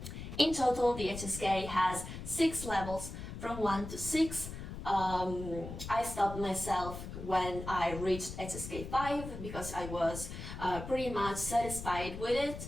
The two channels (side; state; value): left; noise; rumble, 9 dB below the sound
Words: In total, the HSK has 6 levels, from 1 to 6. I stopped myself when I reached HSK 5 because I was pretty much satisfied with